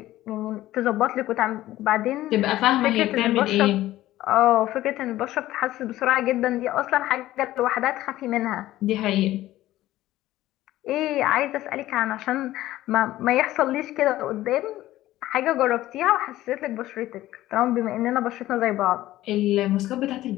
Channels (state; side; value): quieter; right; 15.2 dB